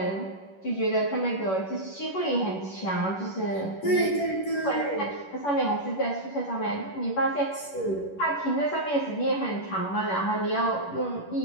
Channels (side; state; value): right; late; 11 ms